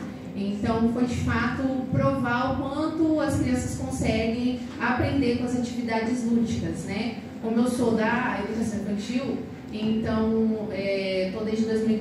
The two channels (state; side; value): identical; both; correlation 1.00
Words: Então, foi de fato provar o quanto as crianças conseguem aprender com as atividades lúdicas, né? Como eu sou da educação infantil, então, estou desde